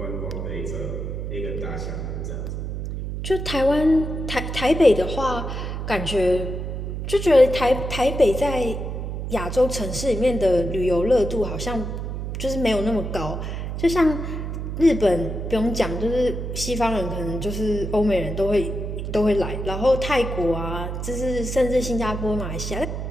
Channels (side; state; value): right; noise; hum, 5 dB below the sound